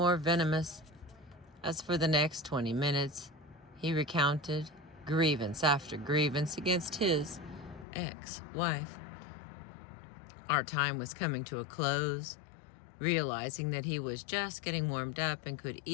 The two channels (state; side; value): drops out; right; at 7.9 s